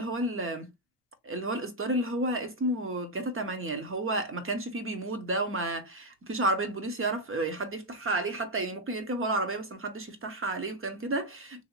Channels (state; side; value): normal; both; correlation 0.01